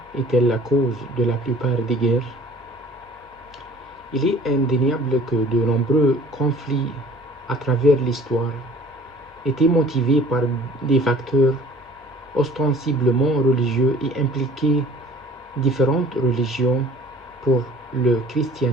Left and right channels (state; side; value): normal; both; correlation 0.50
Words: est-elle la cause de la plupart des guerres? Il est indéniable que de nombreux conflits à travers l'histoire étaient motivés par des facteurs ostensiblement religieux et impliquaient différentes religions. Pour le